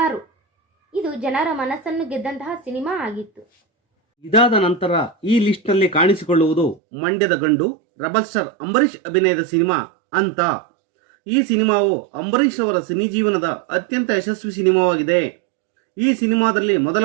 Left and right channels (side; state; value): left; drops out; at 6.8 s